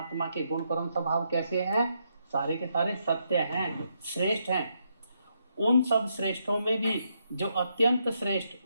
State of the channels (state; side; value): inverted; both; correlation -0.79